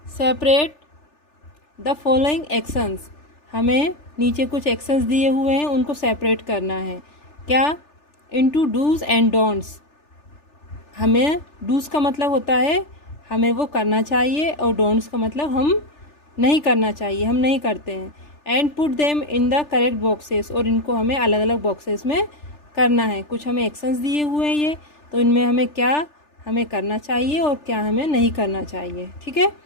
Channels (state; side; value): late; right; 3.4 ms